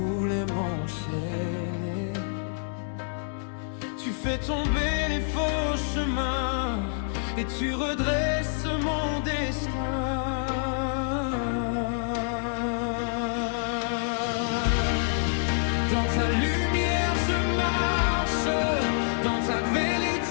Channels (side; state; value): right; silent; digital silence